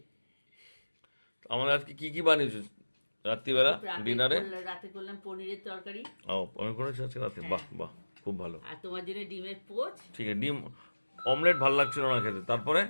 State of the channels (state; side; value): inverted; both; correlation -1.00